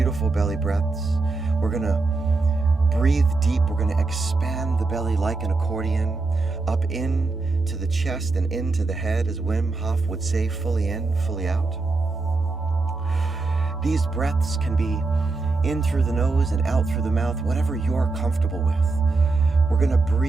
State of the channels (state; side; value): quieter; left; 3.7 dB